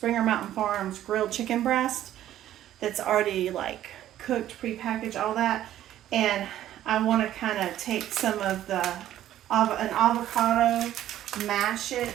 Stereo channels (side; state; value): left; quieter; 12.5 dB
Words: Mountain Farms grilled chicken breast that's already like cooked, prepackaged, all that. And I want to kind of take some of an avocado, mash